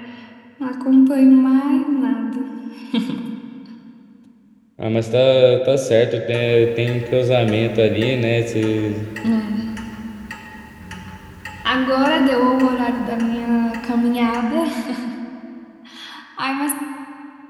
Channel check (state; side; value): identical; both; correlation 1.00